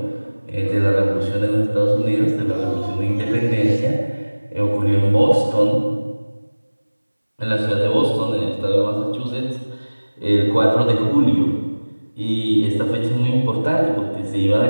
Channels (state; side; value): inverted; both; correlation -1.00